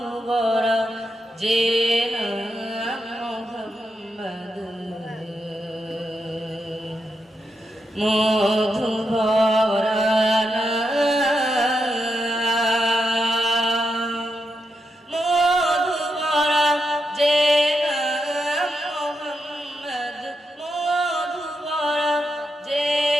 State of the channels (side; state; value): both; normal; correlation 0.85